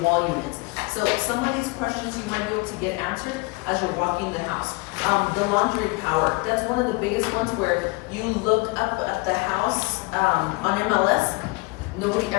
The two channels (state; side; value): quieter; right; 26.3 dB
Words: wall units? So some of these questions you might be able to get answered as you're walking the house. The laundry power, that's one of the biggest ones where you look up at the house, on MLS, nobody